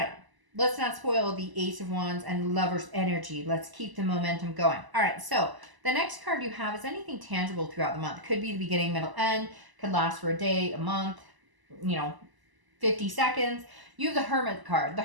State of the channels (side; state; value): left; late; 1.0 ms